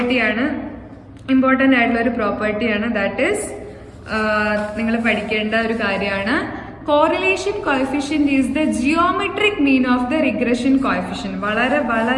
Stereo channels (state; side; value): identical; both; correlation 1.00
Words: ഇമ്പോർട്ടന്റ് ആയിട്ടുള്ള ഒരു പ്രോപ്പർട്ടിയാണ്. ദാറ്റ് ഈസ് നിങ്ങൾ പഠിക്കേണ്ട ഒരു കാര്യമാണ്. Correlation coefficient is the geometric mean of the regression coefficient. വളരെ